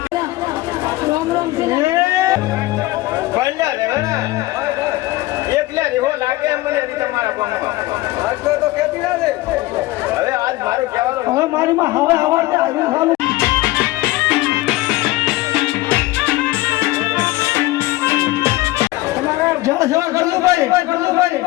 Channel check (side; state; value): right; quieter; 18.6 dB